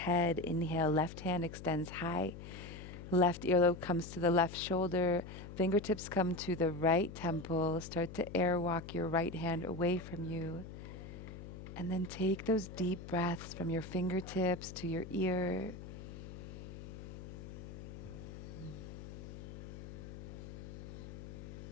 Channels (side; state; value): left; noise; hum, 11 dB below the sound